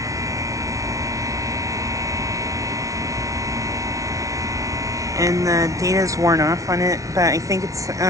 And the data's worn off on it, but I think it's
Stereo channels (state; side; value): late; left; 0.16 ms